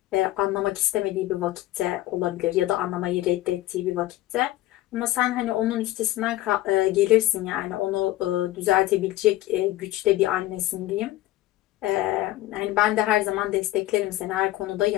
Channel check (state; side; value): quieter; right; 15.8 dB